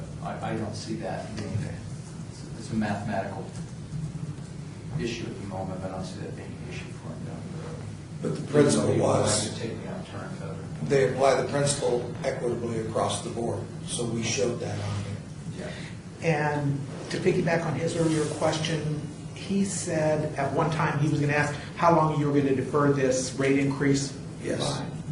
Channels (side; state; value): both; identical; correlation 1.00